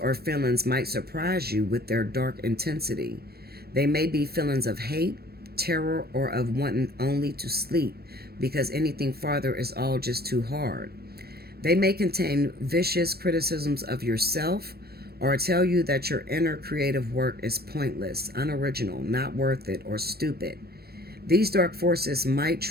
feelings might surprise you with their dark intensity. They may be feelings of hate, terror, or of wanting only to sleep because anything farther is all just too hard. They may contain vicious criticisms of yourself or tell you that your inner creative work is pointless, unoriginal, not worth it, or stupid. These dark forces might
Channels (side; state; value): left; late; 0.46 ms